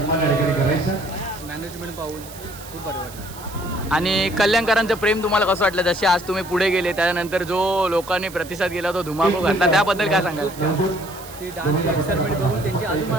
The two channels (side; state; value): right; noise; hiss, 17 dB below the sound